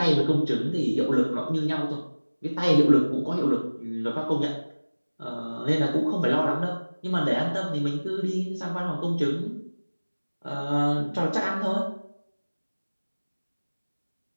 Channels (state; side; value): inverted; both; correlation -1.00